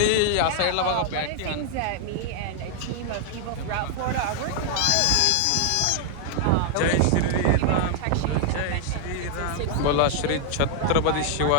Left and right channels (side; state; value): both; different; correlation 0.00